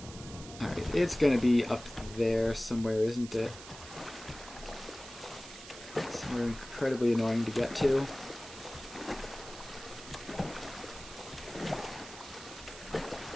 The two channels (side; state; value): right; noise; hiss, 15 dB below the sound